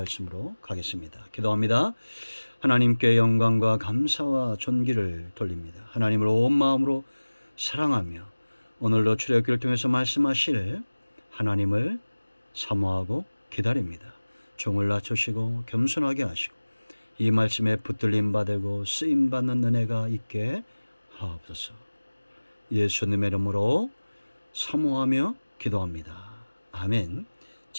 가겠습니다. 기도합니다. 하나님께 영광과 감사와 존귀를 돌립니다. 하나님을 온 마음으로 사랑하며 오늘도 출애굽기를 통해서 말씀하실 하나님을 사모하고 기다립니다. 종을 낮추시고 겸손하게 하시고 이 말씀에 붙들림 받고 쓰임 받는 은혜가 있게 하옵소서. 예수님의 이름으로 사모하며 기도합니다. 아멘.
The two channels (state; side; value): inverted; both; correlation -1.00